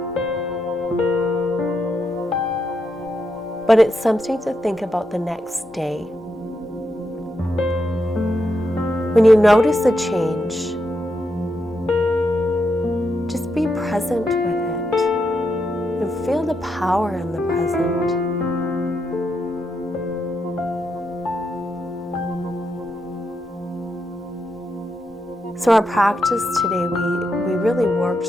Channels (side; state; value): both; normal; correlation 0.82